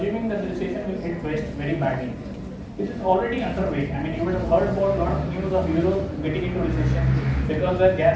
that the recession will hit West very badly. This is already underway. I mean, you would have heard about a lot of news of Europe getting into recession because their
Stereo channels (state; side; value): identical; both; correlation 1.00